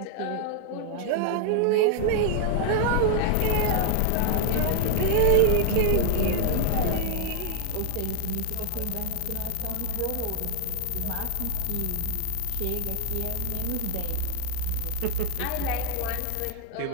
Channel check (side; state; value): both; different; correlation 0.00